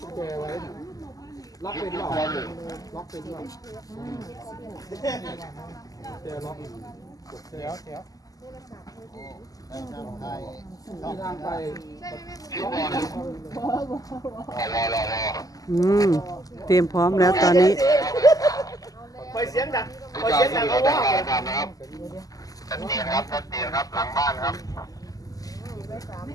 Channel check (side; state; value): right; late; 0.17 ms